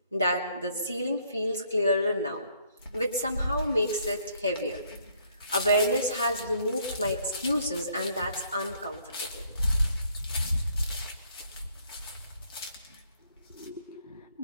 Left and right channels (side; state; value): both; inverted; correlation -0.66